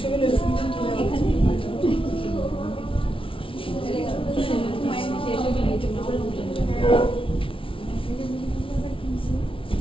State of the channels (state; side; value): late; right; 0.25 ms